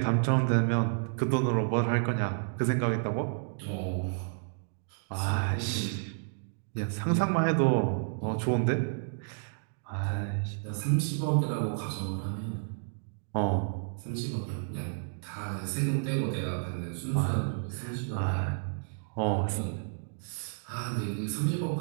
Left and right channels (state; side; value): silent; left; digital silence